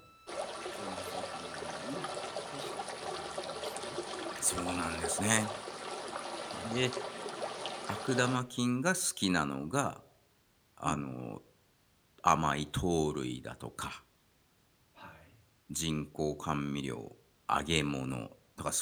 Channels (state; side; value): identical; both; correlation 1.00